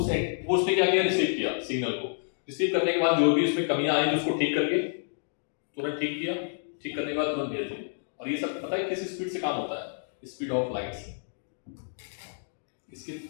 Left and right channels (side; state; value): right; silent; digital silence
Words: क्या किया, रिसीव किया सिग्नल को, रिसीव करने के बाद जो भी उसमें कमियां आई उसको ठीक करके तुरंत ठीक किया, ठीक करने के बाद तुरंत भेज दिया। और ये सब पता है किस स्पीड से काम होता है, स्पीड ऑफ लाइट से।